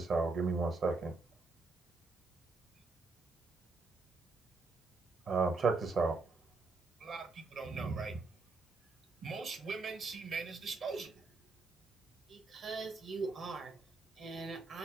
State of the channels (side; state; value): left; quieter; 3.8 dB